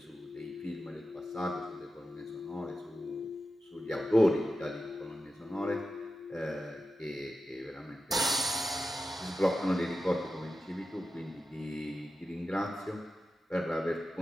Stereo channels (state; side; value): normal; both; correlation 0.92